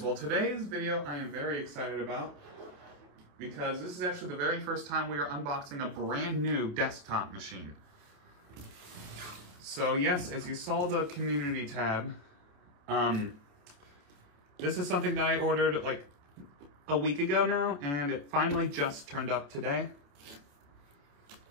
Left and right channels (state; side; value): late; left; 28 ms